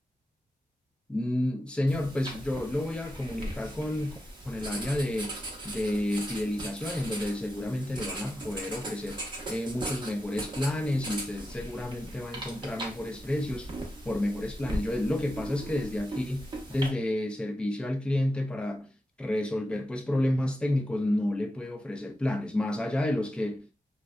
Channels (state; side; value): normal; both; correlation 0.90